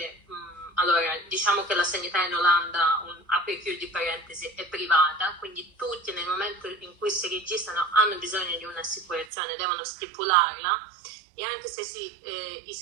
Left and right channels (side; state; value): left; drops out; at 9.2 s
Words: allora diciamo che la sanità in Olanda, apri e chiudi parentesi, è privata, quindi tutti nel momento in cui si registrano hanno bisogno di un'assicurazione, devono stipularla, e anche se si